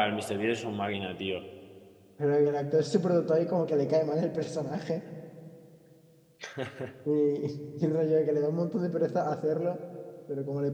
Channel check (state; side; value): identical; both; correlation 1.00